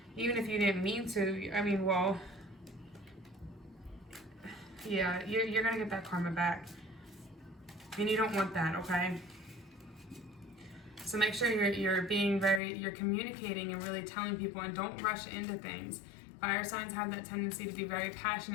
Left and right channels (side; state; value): right; drops out; at 12.6 s